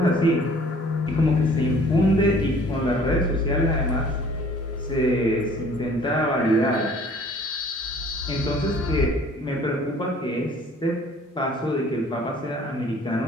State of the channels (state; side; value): normal; both; correlation 0.53